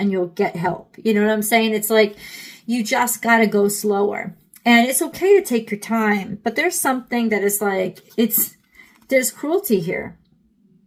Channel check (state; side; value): identical; both; correlation 1.00